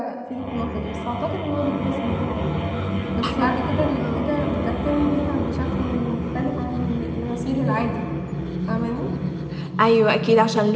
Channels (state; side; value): identical; both; correlation 1.00